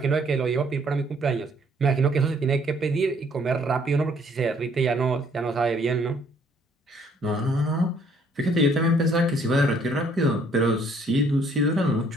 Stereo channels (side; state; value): both; normal; correlation 0.63